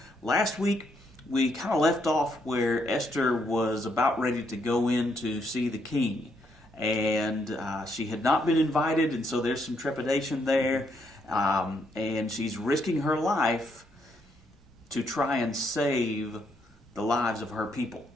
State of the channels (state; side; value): normal; both; correlation 0.75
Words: last week we kind of left off where Esther was about ready to go in to see the king, and she had not been invited, and so there's some trepidation there, and she's risking her life to try and save the lives of her people.